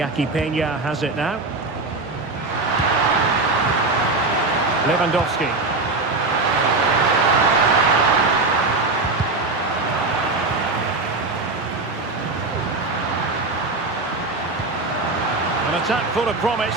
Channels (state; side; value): quieter; left; 3.4 dB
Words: Peña has it now. Lewandowski. An attack full of promise.